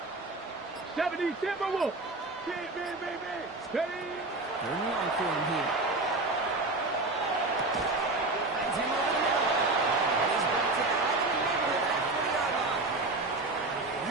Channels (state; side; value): quieter; left; 3.1 dB